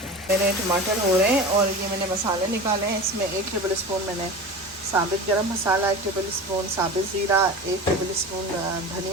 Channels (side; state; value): both; normal; correlation 0.32